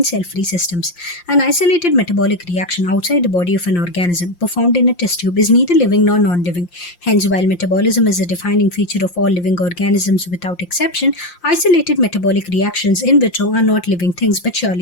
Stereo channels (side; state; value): right; late; 5.7 ms